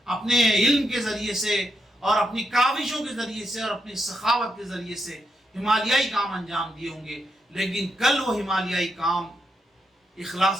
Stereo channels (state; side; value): normal; both; correlation 0.82